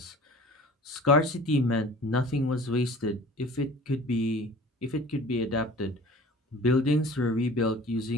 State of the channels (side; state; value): both; normal; correlation 0.45